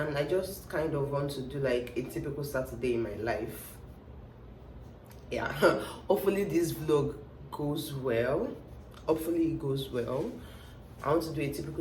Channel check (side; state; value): both; identical; correlation 1.00